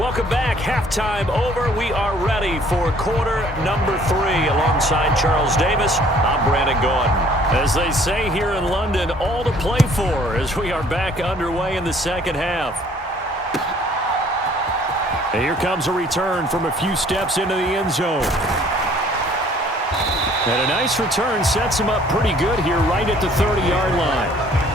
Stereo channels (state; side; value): normal; both; correlation 0.57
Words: back. Halftime over. We are ready for quarter number 3. Alongside Charles Davis, I'm Brandon Gordon. As they say here in London, all to play for as we are back underway in the second half. And here comes a return from a few steps into the end zone. And a nice return sets him up pretty good here right at the 30-yard line.